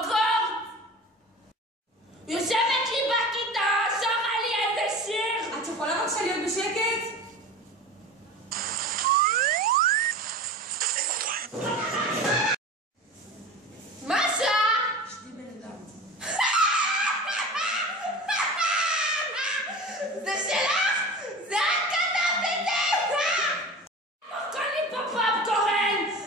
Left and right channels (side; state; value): both; normal; correlation 0.35